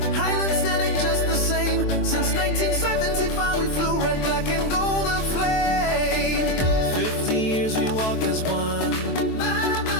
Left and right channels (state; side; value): late; right; 23 ms